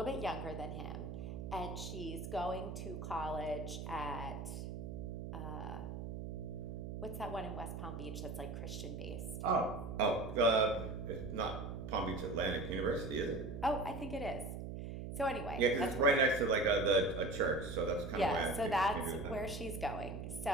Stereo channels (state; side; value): noise; right; hum, 6 dB below the sound